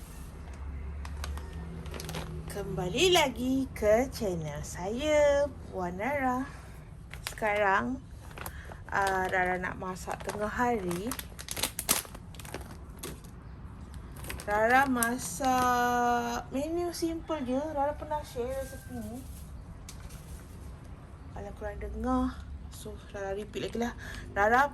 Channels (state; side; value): identical; both; correlation 1.00